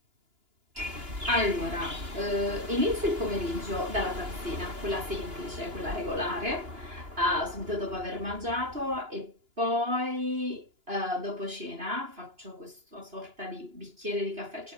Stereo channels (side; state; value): left; late; 2.9 ms